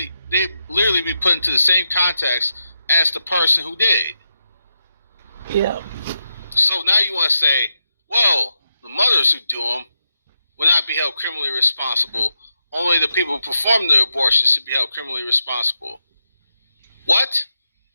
be put into the same context as the person who did. Yeah. So now you want to say, well, the mothers who do them will not be held criminally responsible. Only the people who perform the abortion should be held criminally responsible. What?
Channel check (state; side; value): inverted; both; correlation -0.86